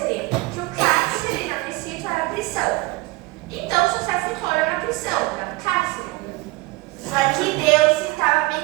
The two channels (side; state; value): left; quieter; 22.1 dB